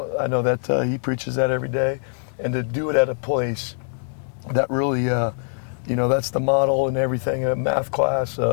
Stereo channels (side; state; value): right; silent; digital silence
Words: I know that he preaches that every day, and to do it at a place that really, you know, that's the model and everything. A math class,